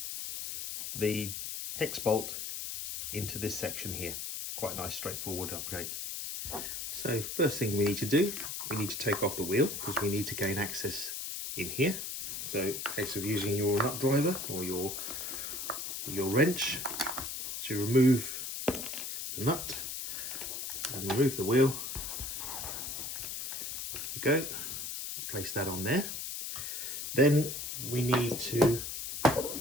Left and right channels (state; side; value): noise; left; hiss, 5 dB below the sound